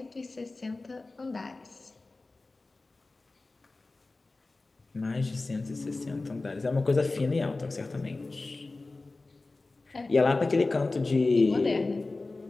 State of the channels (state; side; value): quieter; right; 3.3 dB